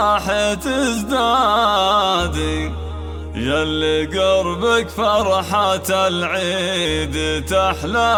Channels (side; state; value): both; identical; correlation 1.00